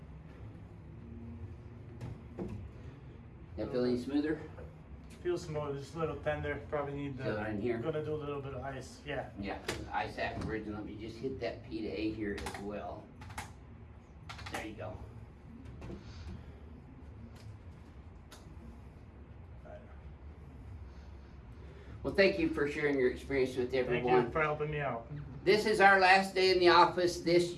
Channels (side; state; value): both; identical; correlation 1.00